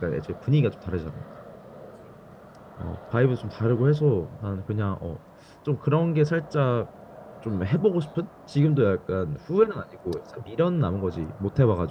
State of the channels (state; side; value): identical; both; correlation 1.00